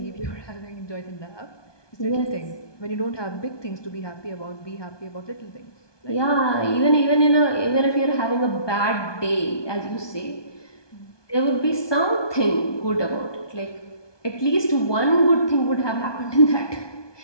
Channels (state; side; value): late; right; 1.2 ms